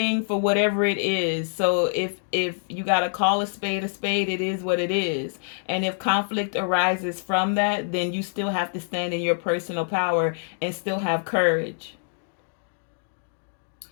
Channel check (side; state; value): right; silent; digital silence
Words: for whatever it is. So if you got to call a spade, it is what it is. And if conflict arises from that, then you still have to stand in your personal power and still have courage.